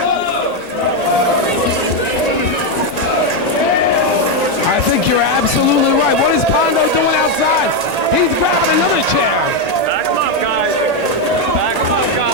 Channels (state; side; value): late; right; 1.9 ms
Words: I think you're absolutely right. What is Pondo doing outside? He's grabbing another chair.